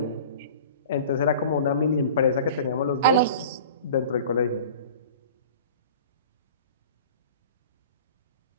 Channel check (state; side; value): inverted; both; correlation -0.41